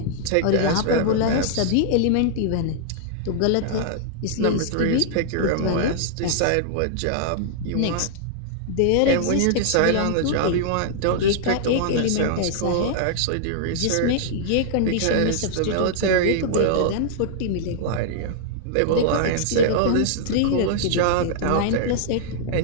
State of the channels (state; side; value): different; both; correlation -0.01